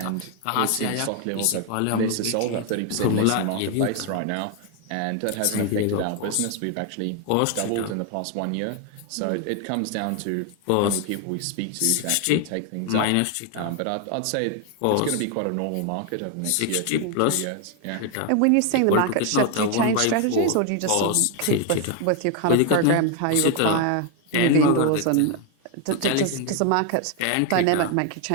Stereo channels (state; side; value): different; both; correlation 0.01